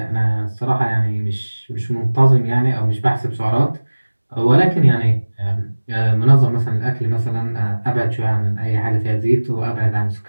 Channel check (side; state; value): both; inverted; correlation -1.00